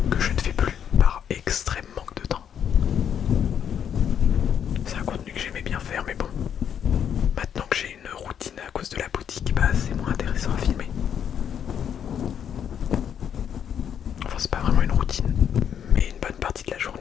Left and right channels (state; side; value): quieter; right; 8.6 dB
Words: Que je ne fais plus par extrême manque de temps. C'est un contenu que j'aimais bien faire, mais bon. Maintenant que j'ai une routine à cause de la boutique, bah c'est moins intéressant à filmer. Enfin, c'est pas vraiment une routine, mais une bonne partie de la